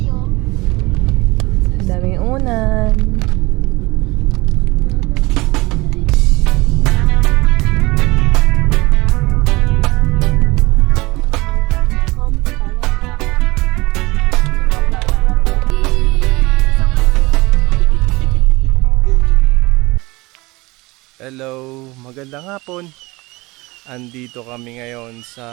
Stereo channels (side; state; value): left; quieter; 22.6 dB